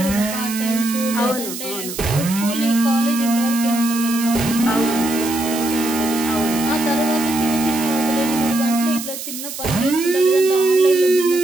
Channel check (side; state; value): right; noise; hiss, 9 dB below the sound